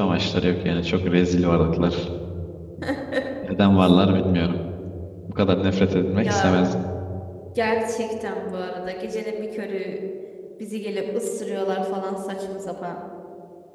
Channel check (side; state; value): both; identical; correlation 1.00